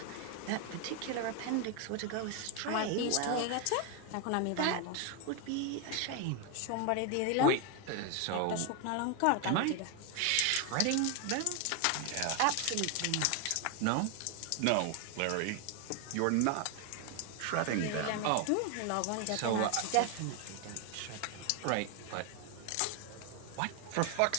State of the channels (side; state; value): both; different; correlation 0.01